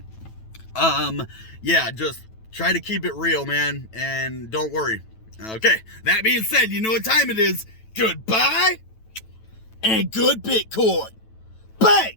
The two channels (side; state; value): right; late; 9.1 ms